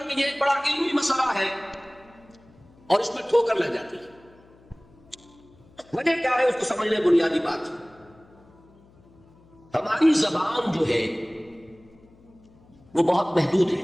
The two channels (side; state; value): left; noise; hum, 28 dB below the sound